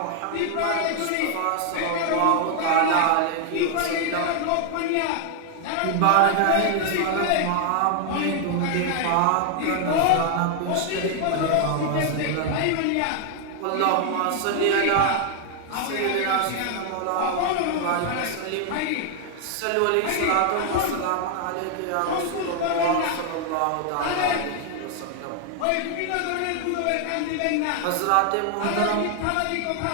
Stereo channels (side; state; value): both; different; correlation 0.00